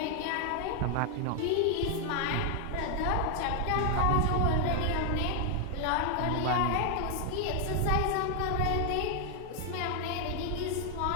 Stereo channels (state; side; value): different; both; correlation 0.00